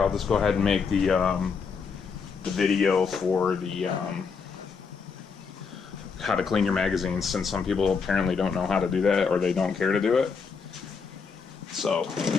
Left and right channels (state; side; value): quieter; right; 5.5 dB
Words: just go ahead and make the video for the how to clean your magazines, since some people apparently don't know how to do that, or they don't care to do it. So,